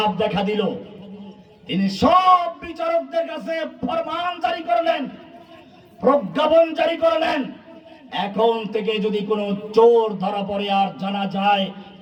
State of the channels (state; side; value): identical; both; correlation 1.00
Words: দেখা দিল, তিনি সব বিচারকদের কাছে ফরমান জারি করলেন, প্রজ্ঞাপন জারি করলেন, এখন থেকে যদি কোনো চোর ধরা পড়ে আর জানা যায়